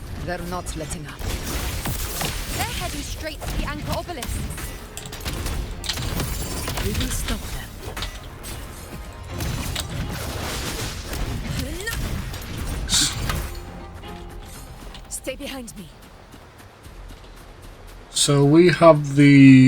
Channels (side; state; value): both; identical; correlation 1.00